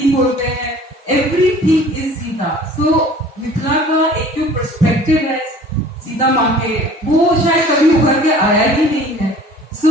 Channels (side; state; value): both; normal; correlation 0.48